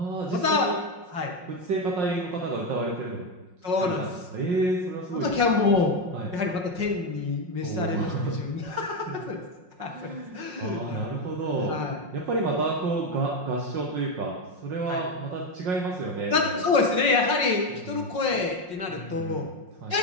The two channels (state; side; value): late; left; 5.6 ms